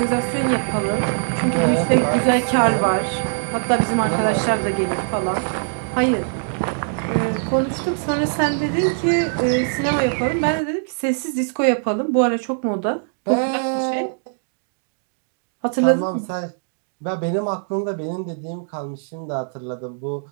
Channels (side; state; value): left; silent; digital silence